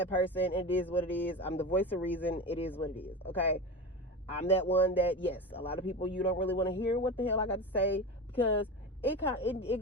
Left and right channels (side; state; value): both; normal; correlation 0.25